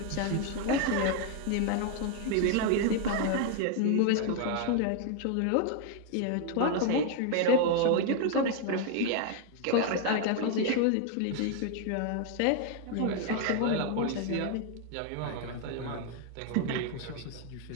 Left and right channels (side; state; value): both; different; correlation 0.00